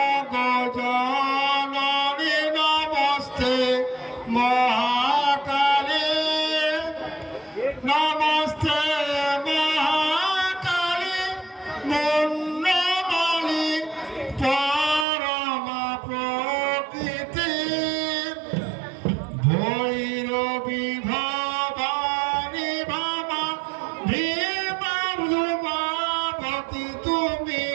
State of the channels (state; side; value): drops out; left; at 15.1 s